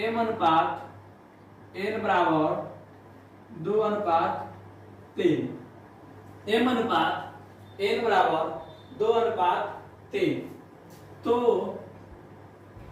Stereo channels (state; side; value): identical; both; correlation 1.00